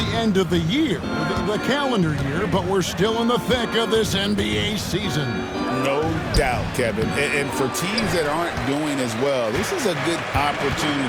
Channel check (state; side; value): identical; both; correlation 1.00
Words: end of the year, the calendar year, but we're still in the thick of this NBA season. No doubt, Kevin. And for teams that aren't doing as well, this is a good